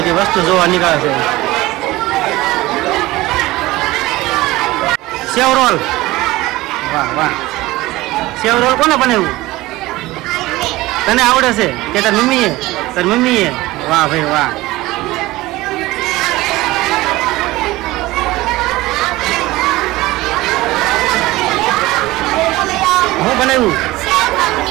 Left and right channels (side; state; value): left; quieter; 18.8 dB